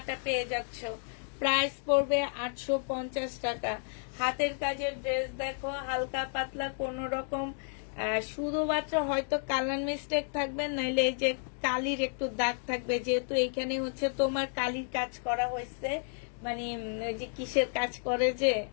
পেয়ে যাচ্ছ। প্রাইস পড়বে 850 টাকা। হাতের কাজের ড্রেস দেখো, হালকা পাতলা, কোন রকম শুধুমাত্র হয়তো কালার মিস্টেক থাকবে, নাইলে এই যে কালির একটু দাগ থাকবে, যেহেতু এইখানে হচ্ছে তোমার কালির কাজ করা হয়েছে। মানে ওই যে কিসের কাজ করে, যে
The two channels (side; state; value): right; silent; 57 dB below the other